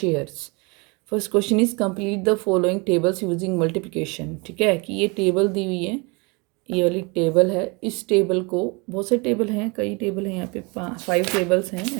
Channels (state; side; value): quieter; left; 29.2 dB